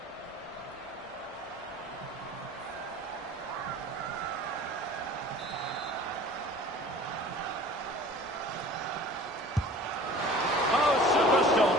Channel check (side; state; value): both; normal; correlation 0.44